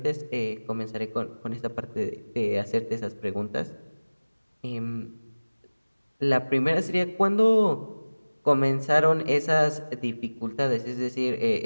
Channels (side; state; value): both; inverted; correlation -1.00